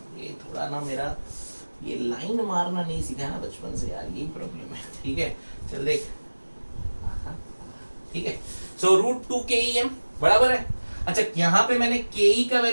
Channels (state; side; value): inverted; both; correlation -1.00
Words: ये थोड़ा ना मेरा ये लाइन मारना नहीं सीखा ना बचपन से यार, यही प्रॉब्लम है। ठीक है, चल देख, ठीक है, सो रूट 2KEM बराबर है। अच्छा, यहां पे मैंने के का